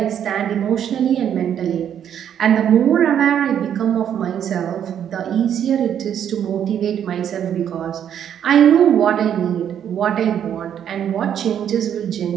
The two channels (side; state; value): left; quieter; 9.3 dB